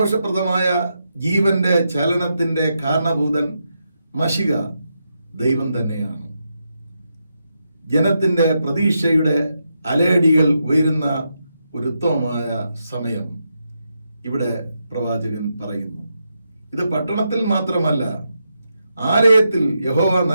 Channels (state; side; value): inverted; both; correlation -0.84